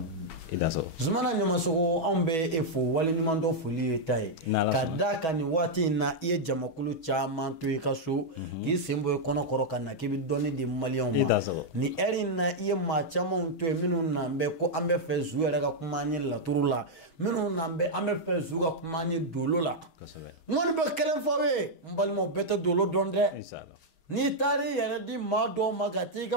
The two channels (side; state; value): right; late; 6.2 ms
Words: i da sɔrɔ Zumana Ɲamasogo anw bɛ e fo waleɲuman dɔ foli ye ta ye ka da ka nin waati in na i ye jamakulu caman to i ka so k'i sen bɔ i kɔnɔkɔrɔ ka na k'i bɛ dɔnni di maliyɛnw ma nin heure in na i ye maa camanw to yen minnu n'an bɛ ko an bɛ fɛ Zu yɛrɛ ka kuma an ye laturu la minnu n'an bɛ an bɛ fɛ Zu ka kuma an ye dolo la n kɔni bɛ kelen fɔ aw ye n balimaw bɛɛ tɛ dolo dɔn dɛ n'i taar'i yɛrɛ di maa dɔw ma ka t'i